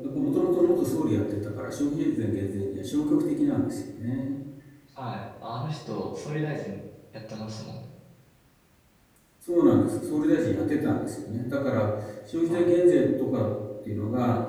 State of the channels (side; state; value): both; identical; correlation 1.00